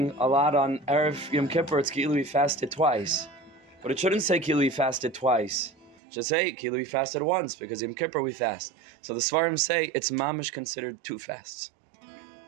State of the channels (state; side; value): drops out; left; at 6.0 s